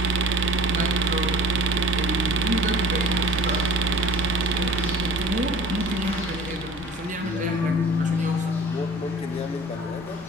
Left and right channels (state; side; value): normal; both; correlation 0.46